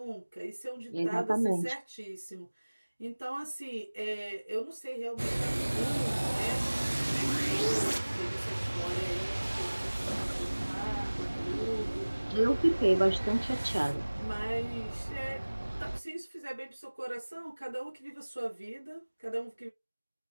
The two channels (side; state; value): both; inverted; correlation -1.00